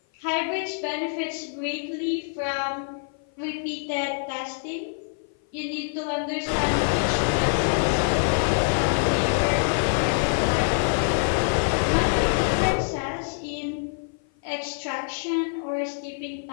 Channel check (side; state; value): right; silent; 56 dB below the other